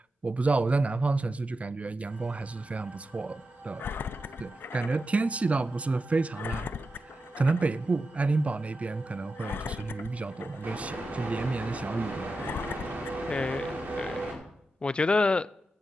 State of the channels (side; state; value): both; normal; correlation 0.90